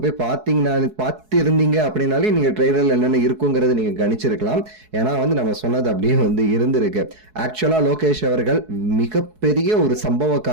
போய் பார்த்து இருந்தீங்க அப்படின்னாலே நீங்கள் ட்ரெய்லரில் என்னென்ன இருக்குங்கிறத நீங்கள் கணிச்சிருக்கலாம். ஏன்னா வந்து நம்ம சொன்னது அப்படியே வந்து இருந்திருக்கு. ஆக்சுவலா லோகேஷ் அவர்கள் மிகப்பெரிய ஒரு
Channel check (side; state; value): left; late; 4.7 ms